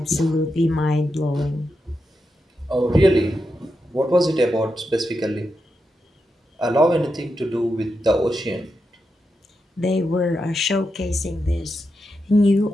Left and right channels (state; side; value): normal; both; correlation 0.87